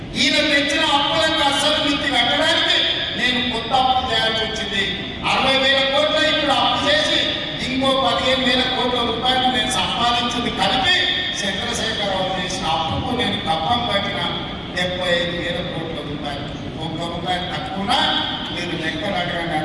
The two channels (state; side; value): identical; both; correlation 1.00